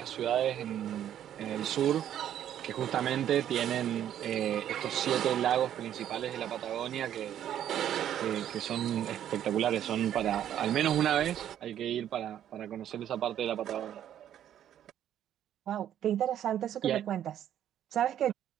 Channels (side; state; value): left; quieter; 10.7 dB